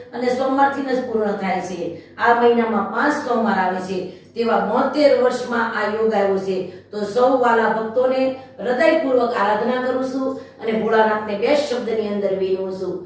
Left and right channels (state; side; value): identical; both; correlation 1.00